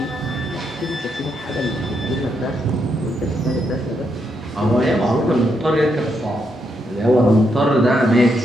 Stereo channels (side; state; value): both; normal; correlation 0.79